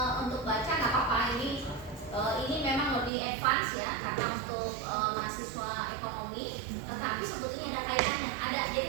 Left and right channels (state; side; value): drops out; left; at 3.1 s